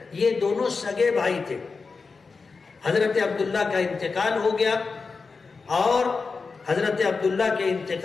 یہ دونوں سگے بھائی تھے. حضرت عبداللہ کا انتقال ہو گیا اور حضرت عبداللہ کے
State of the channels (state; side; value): quieter; right; 4.5 dB